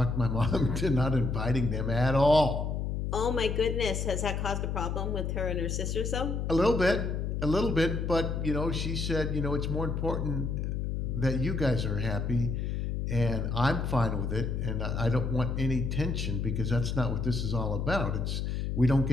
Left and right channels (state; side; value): noise; left; hum, 1 dB below the sound